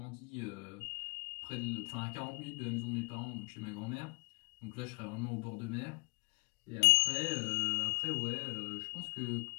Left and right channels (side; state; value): right; quieter; 30.1 dB